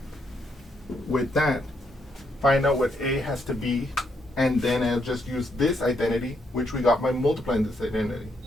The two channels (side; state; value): both; normal; correlation 0.76